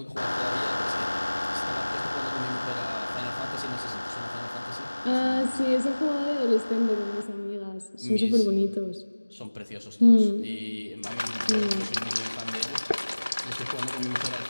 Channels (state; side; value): inverted; both; correlation -1.00